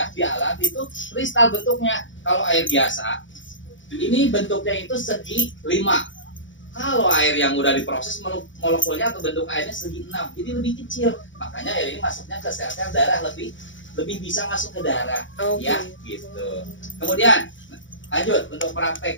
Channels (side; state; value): right; late; 0.56 ms